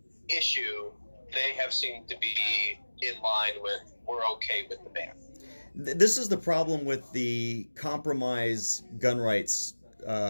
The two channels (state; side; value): inverted; both; correlation -1.00